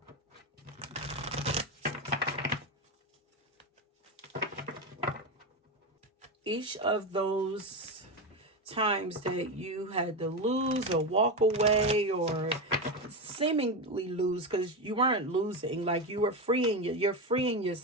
Each of those times that you had to lose or walk away or seemingly lose, because you weren't losing, like you were you're freeing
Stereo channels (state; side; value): normal; both; correlation 0.15